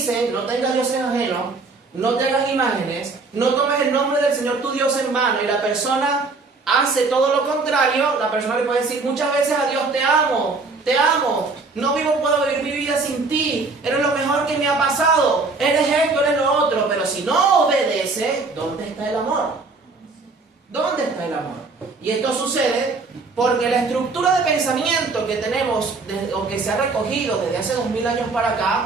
no tengas dioses ajenos, no te hagas imágenes, no tomes el nombre del Señor tu Dios en vano, y la persona hace todo lo contrario, la persona le puede decir muchas veces a Dios: te amo, no puedo vivir mi vida sin ti, eres lo mejor que me ha pasado, eres esto, eres lo otro. Pero si no obedece, ¿dónde está el amor? ¿Dónde está el amor? Y esto sucede porque la estructura de pensamiento que tenemos, o que se ha recogido desde hace 2000 años para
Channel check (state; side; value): quieter; left; 3.9 dB